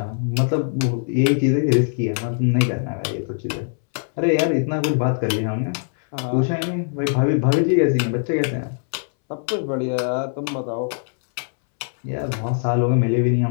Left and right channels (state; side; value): silent; right; 64 dB below the other